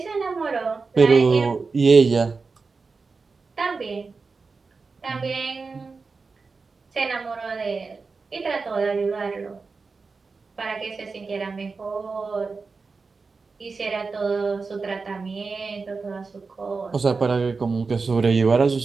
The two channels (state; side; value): quieter; left; 4.4 dB